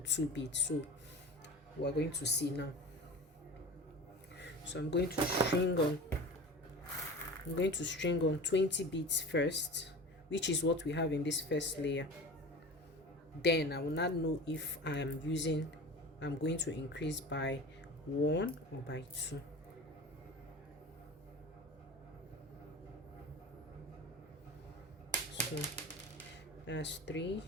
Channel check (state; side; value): normal; both; correlation 0.35